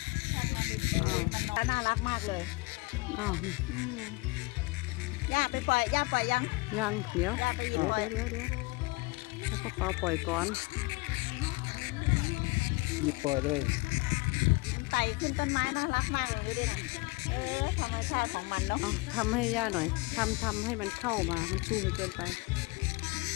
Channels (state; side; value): quieter; right; 25.0 dB